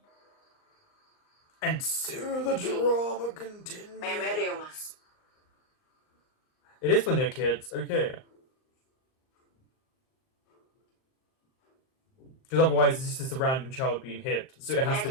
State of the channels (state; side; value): late; right; 38 ms